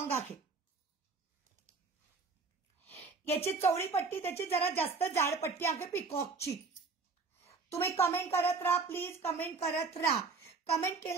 आहे. याची चौडी पट्टी त्याची जरा जास्त जाड पट्टी आहे पिकॉकची. तुम्ही कमेंट करत राहा प्लीज. कमेंट करत राहा. कमेंट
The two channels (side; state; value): left; quieter; 4.4 dB